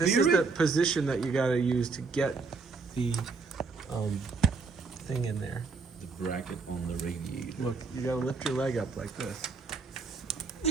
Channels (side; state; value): left; quieter; 4.5 dB